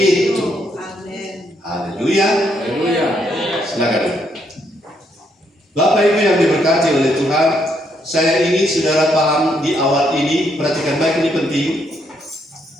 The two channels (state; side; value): normal; both; correlation 0.74